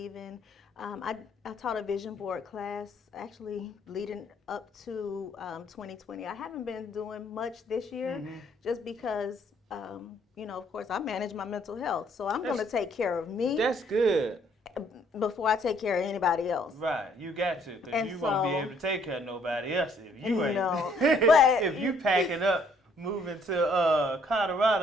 in, I taught a vision board class actually leading up to 2020. I haven't been doing much this year just because, of course, I manage my mental health. So I'm going to take care of me. That's good. Before I take care of anybody else. Right. You got to, because you won't be able to take care of nobody else if you ain't. No. But if you packing up, moving to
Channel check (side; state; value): both; normal; correlation 0.64